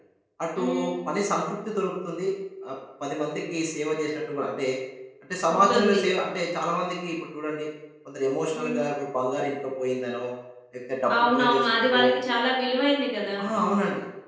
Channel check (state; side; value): identical; both; correlation 1.00